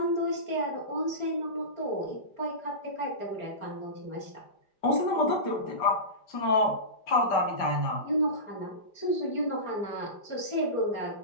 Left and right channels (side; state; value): right; late; 5.0 ms